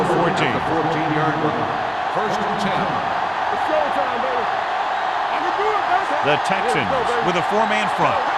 14. The 14-yard line. First and 10. It's showtime, baby. I can do it, baby. The Texans with a four-man front.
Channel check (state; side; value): identical; both; correlation 1.00